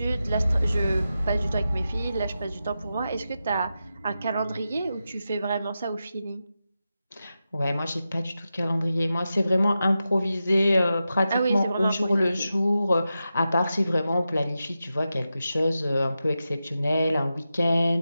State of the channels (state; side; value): inverted; both; correlation -0.91